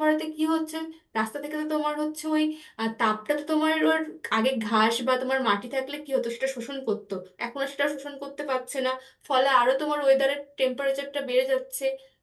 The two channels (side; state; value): both; identical; correlation 1.00